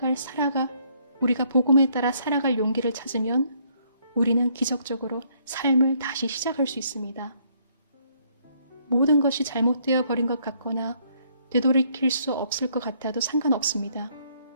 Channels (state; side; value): inverted; both; correlation -0.67